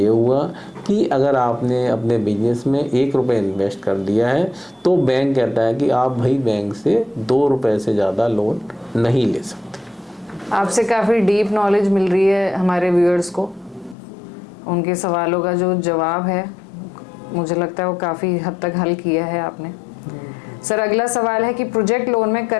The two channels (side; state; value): right; drops out; at 14.0 s